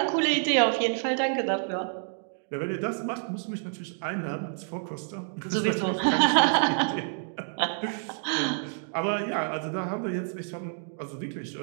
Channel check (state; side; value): silent; left; 59 dB below the other